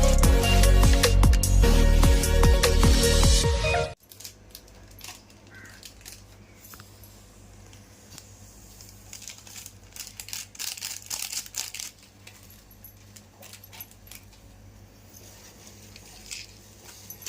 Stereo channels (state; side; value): identical; both; correlation 1.00